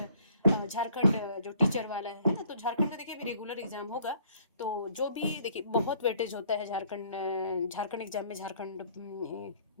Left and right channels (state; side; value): inverted; both; correlation -0.60